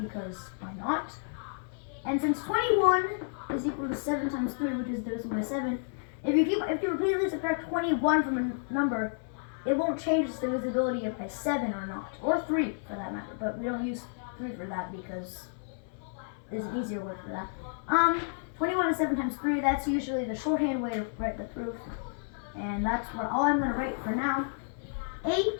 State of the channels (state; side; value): silent; right; 57 dB below the other